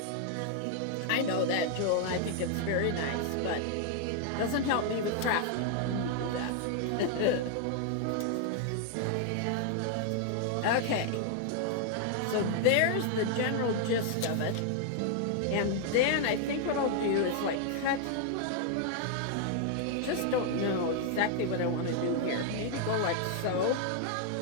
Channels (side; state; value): both; different; correlation 0.00